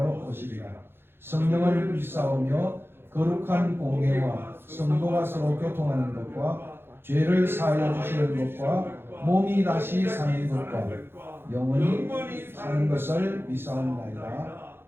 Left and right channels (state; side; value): late; left; 0.11 ms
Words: 오시리라. 성령을 믿사오며 거룩한 공예와 성도가 서로 교통하는 것과 죄를 사하여 주시는 것과 몸이 다시 사는 것과 영원히 사는 것을 믿사옵나이다.